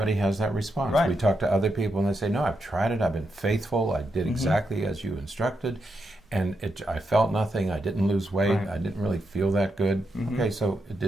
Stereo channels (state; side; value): normal; both; correlation 0.84